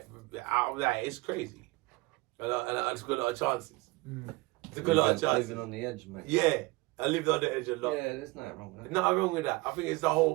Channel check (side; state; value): left; quieter; 22.8 dB